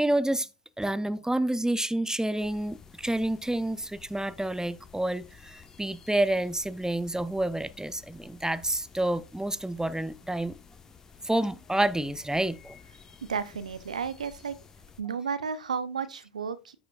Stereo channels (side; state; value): both; normal; correlation 0.75